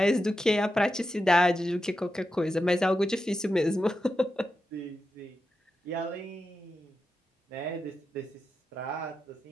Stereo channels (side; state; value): both; normal; correlation 0.89